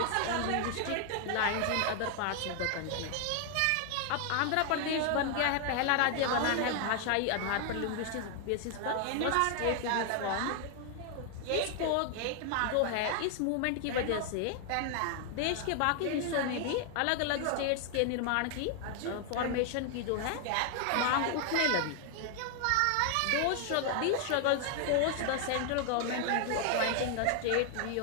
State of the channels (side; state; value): both; different; correlation 0.00